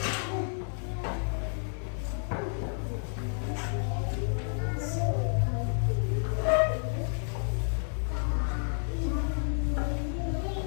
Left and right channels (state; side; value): silent; right; 57 dB below the other